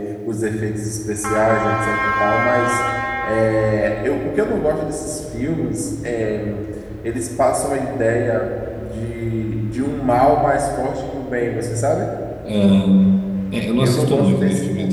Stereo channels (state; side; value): identical; both; correlation 1.00